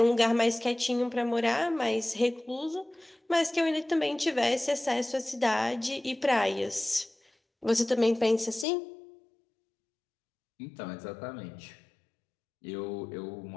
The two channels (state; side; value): drops out; right; at 8.7 s